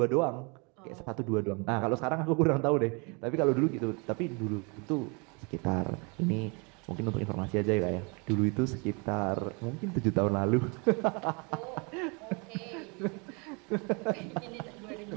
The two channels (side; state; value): left; quieter; 31.6 dB